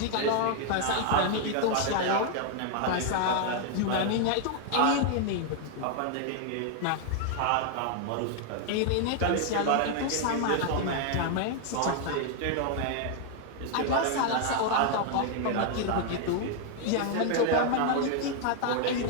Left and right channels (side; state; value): both; different; correlation 0.00